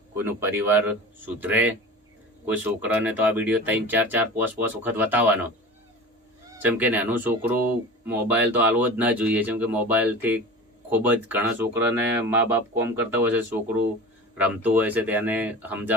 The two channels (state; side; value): normal; both; correlation 0.35